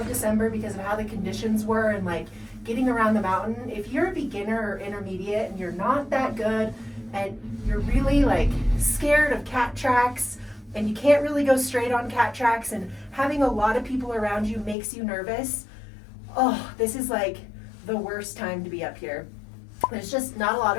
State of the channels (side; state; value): right; drops out; at 14.8 s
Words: December because of how the conditions were and like getting around the mountain. If you're a beginner or intermediate and you're not that good and you're really like scared of cat tracks and you can't really go straight on cat tracks and having a lot of people around you makes you nervous, oh, this is like the worst time to be up here. There's just not a lot